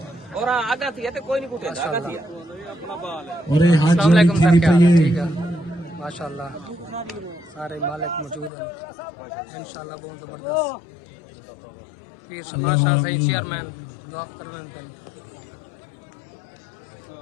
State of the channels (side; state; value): right; drops out; at 8.5 s